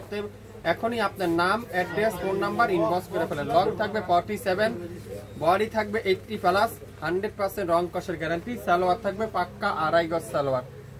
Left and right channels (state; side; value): identical; both; correlation 1.00